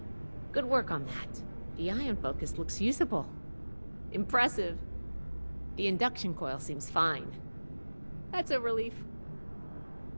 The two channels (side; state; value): both; inverted; correlation -1.00